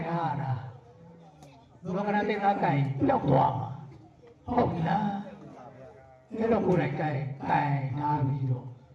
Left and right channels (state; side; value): identical; both; correlation 1.00